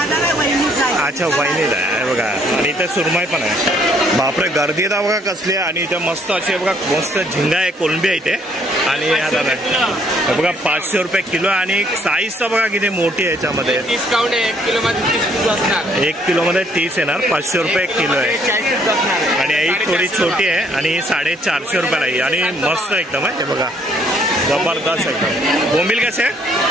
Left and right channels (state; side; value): normal; both; correlation 0.65